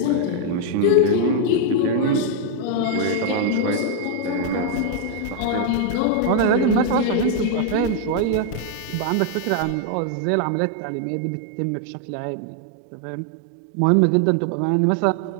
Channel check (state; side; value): different; both; correlation 0.00